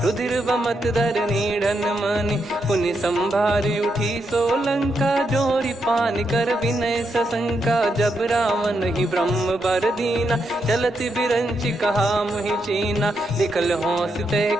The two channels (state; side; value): normal; both; correlation 0.81